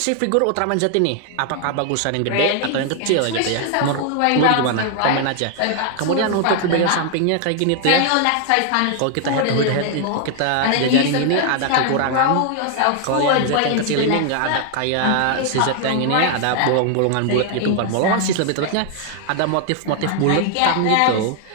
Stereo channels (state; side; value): different; both; correlation 0.00